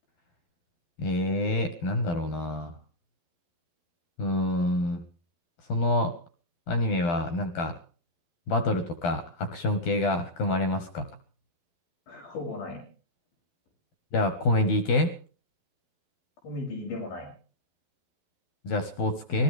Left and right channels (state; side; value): late; right; 12 ms